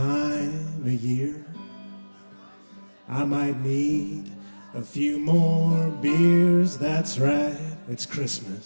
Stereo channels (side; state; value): both; inverted; correlation -1.00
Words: of year. I might need a few more beers, that's right, it's Christmas.